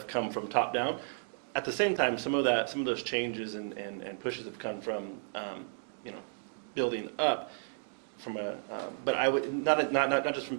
come from top down. At the same time, some of those changes and pushes have come from, building up. But I would not just from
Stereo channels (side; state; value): left; silent; digital silence